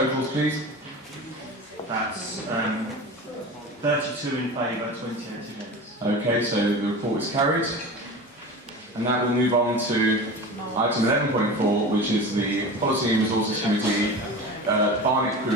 please? That's 32 in favour, 28 against. Okay, so the report is carried. And now we'll move on to item 11.4, which is the Policy and Resources Committee, Barnet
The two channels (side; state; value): both; normal; correlation 0.32